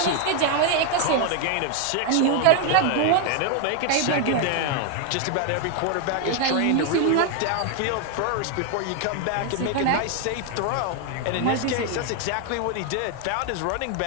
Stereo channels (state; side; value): different; both; correlation 0.01